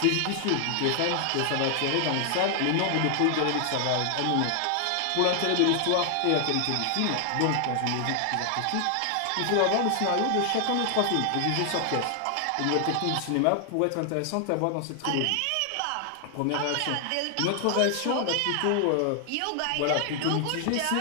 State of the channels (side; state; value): both; different; correlation 0.00